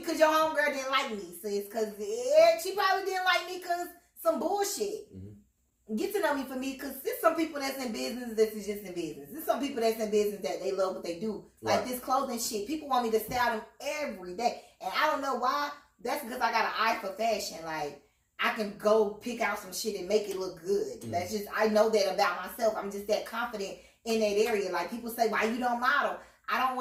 your homegirl didn't like me, sis. Because she probably didn't like me because some bullshit. Mm-hmm. Get to know me for me because there's some people that's in business that's just in business. There's some people that's in business that they love what they do. Right. Like this clothing shit. People want me to style them every day. And I don't know why. That's because I got an eye for fashion. Like, I can go pick out some shit and make it look good. Mm-hmm. That's just, I know that about myself. I'm just that confident in that area. Like, people say, why you don't model? I don't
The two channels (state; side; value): identical; both; correlation 1.00